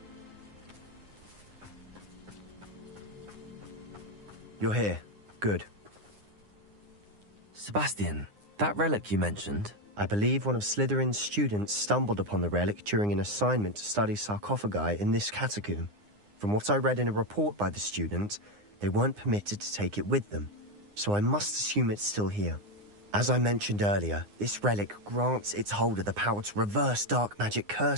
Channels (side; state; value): left; late; 9.7 ms